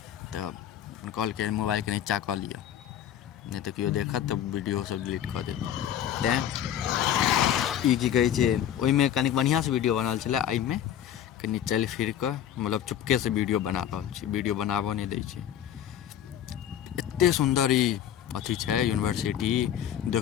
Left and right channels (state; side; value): quieter; right; 10.4 dB